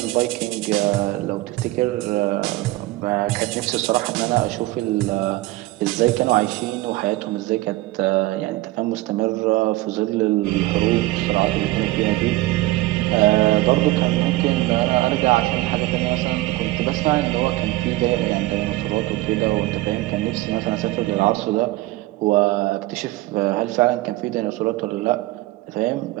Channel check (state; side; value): quieter; left; 18.3 dB